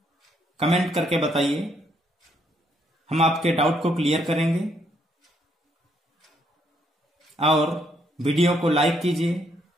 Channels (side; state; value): both; normal; correlation 0.72